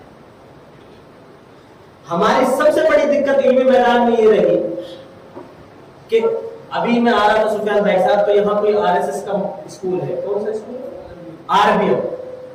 ہماری سب سے بڑی دقت علمی میدان میں یہ رہی کہ ابھی میں آ رہا تھا سفیان بھائی صاحب, تو یہاں کوئی RSS کا اسکول ہے. کون سا اسکول؟ RBM.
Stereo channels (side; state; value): both; identical; correlation 1.00